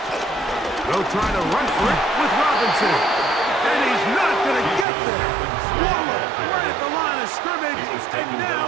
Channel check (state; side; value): drops out; left; at 4.9 s